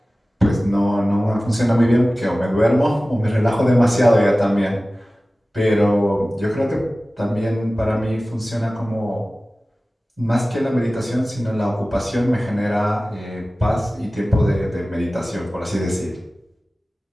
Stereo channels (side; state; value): both; normal; correlation 0.97